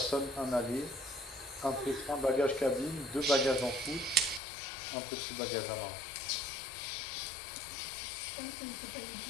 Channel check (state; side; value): drops out; right; at 4.4 s